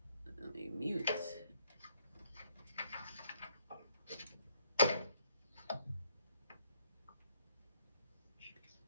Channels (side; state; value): both; inverted; correlation -0.70